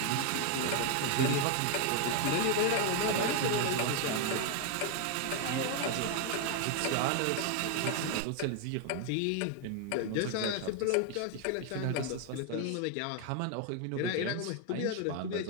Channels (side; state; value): both; different; correlation 0.01